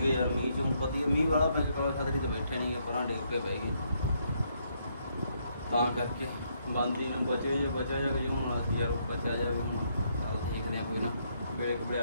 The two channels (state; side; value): inverted; both; correlation -0.73